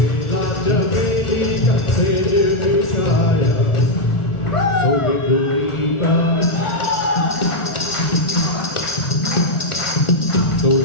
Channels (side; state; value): right; late; 1.4 ms